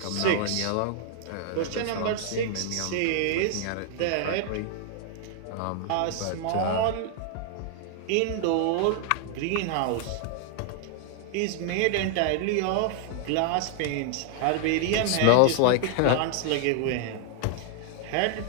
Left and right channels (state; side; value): different; both; correlation 0.00